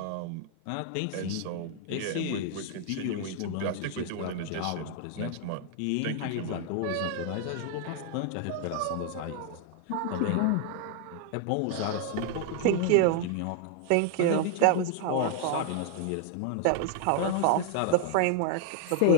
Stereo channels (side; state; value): both; different; correlation 0.00